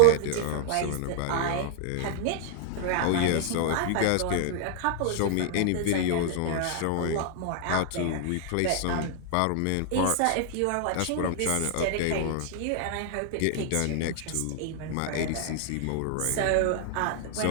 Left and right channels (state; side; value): different; both; correlation 0.00